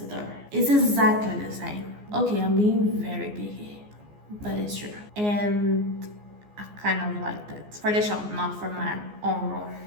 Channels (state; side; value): late; left; 14 ms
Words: door? It's exactly the same. Okay, I'm being very picky, but it's true. And I kind of like that. For the shop, not for my own room.